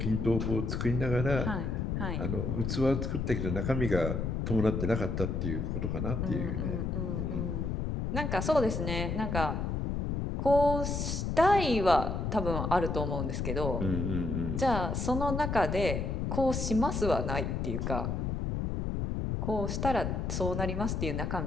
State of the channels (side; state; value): left; noise; rumble, 1 dB below the sound